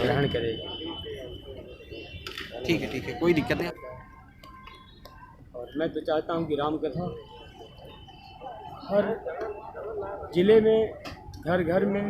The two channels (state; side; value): identical; both; correlation 1.00